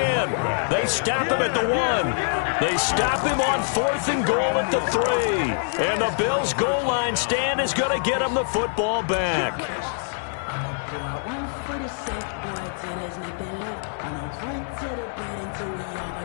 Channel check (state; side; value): silent; right; 62 dB below the other